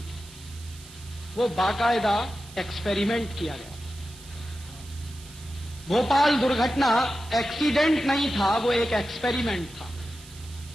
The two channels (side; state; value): right; noise; hiss, 19 dB below the sound